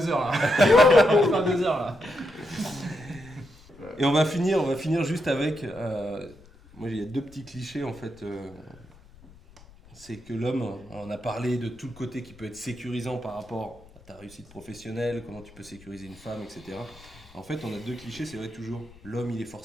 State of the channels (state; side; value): noise; left; rumble, 23 dB below the sound